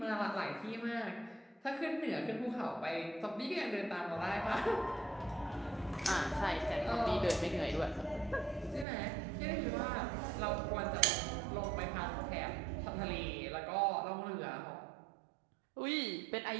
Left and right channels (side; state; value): left; drops out; at 8.8 s